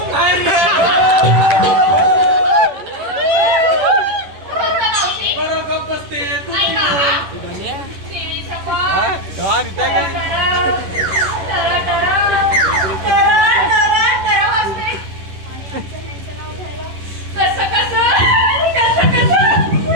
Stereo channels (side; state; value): left; late; 11 ms